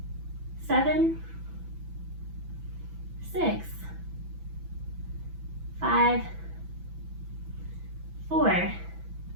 7, 6, 5, 4,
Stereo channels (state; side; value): late; left; 6.0 ms